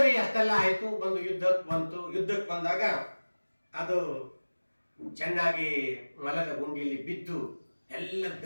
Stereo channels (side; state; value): both; inverted; correlation -1.00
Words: ಅಷ್ಟೆಲ್ಲ ಆಯಿತು. ಯುದ್ಧಕ್ಕೆ ಬಂದಾಗ ಅದು ಚೆನ್ನಾಗಿ ಮಲದ ಗುಂಡಿಯಲ್ಲಿ ಬಿದ್ದು ಎಲ್ಲ